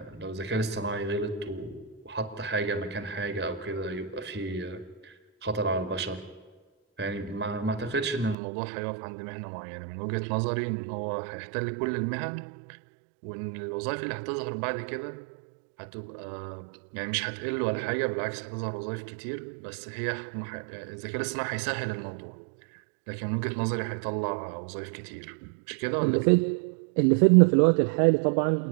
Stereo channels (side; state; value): left; drops out; at 8.3 s